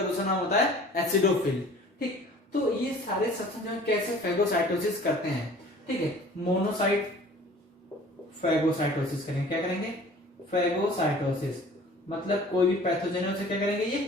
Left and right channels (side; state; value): both; normal; correlation 0.48